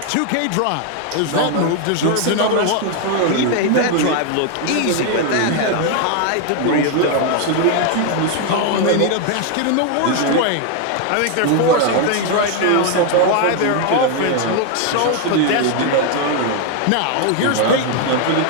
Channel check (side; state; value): both; different; correlation 0.01